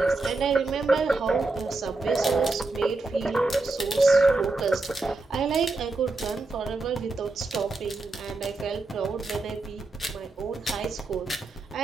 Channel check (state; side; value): quieter; left; 3.3 dB